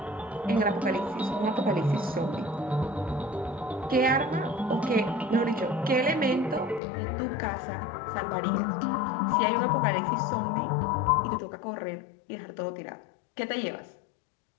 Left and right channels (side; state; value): right; drops out; at 6.8 s